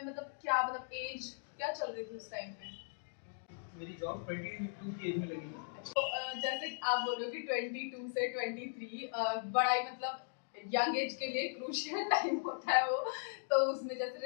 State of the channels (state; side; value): silent; right; digital silence